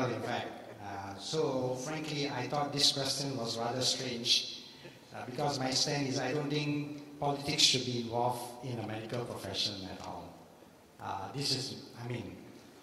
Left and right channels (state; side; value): identical; both; correlation 1.00